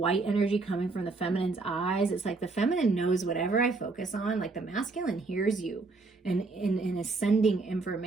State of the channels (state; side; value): quieter; left; 3.7 dB